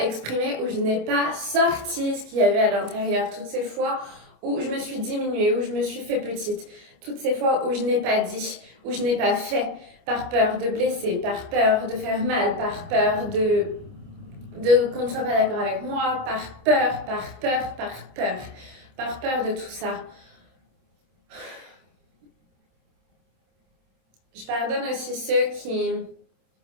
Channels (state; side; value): late; left; 27 ms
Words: où je n'ai pas sorti ce qu'il y avait à l'intérieur, toutes ces fois où je me suis diminuée, où je me suis fait petite, toutes ces fois où je n'ai pas dit, où je n'ai pas fait, par peur de blesser, par peur de faire mal, par peur qu'on ne soit pas d'accord avec moi, par peur de tout ça. Je pardonne aussi ceux qui...